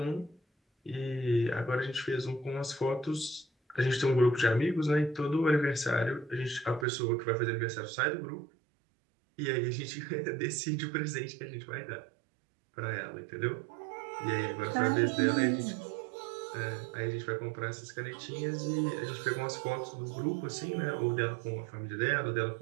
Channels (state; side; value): drops out; left; at 6.9 s